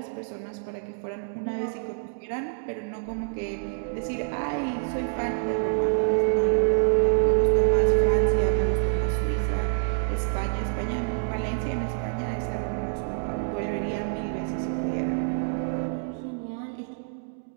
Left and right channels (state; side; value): silent; left; digital silence